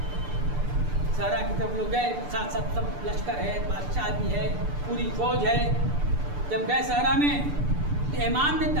सहरा की तरफ लोग गए, साथ साथ सब लश्कर है, बादशाह भी है, पूरी फौज है। जब गए सहरा में तो इमाम ने,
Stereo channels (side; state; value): left; late; 6.8 ms